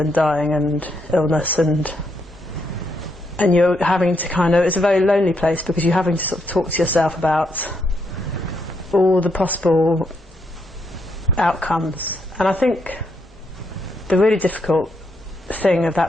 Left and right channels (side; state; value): both; normal; correlation 0.78